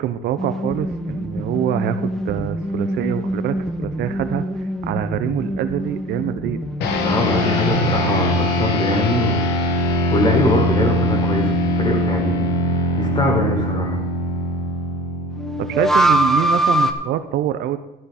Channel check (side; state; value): both; normal; correlation 0.44